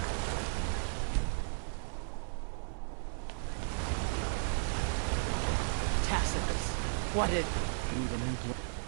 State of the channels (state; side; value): silent; left; 55 dB below the other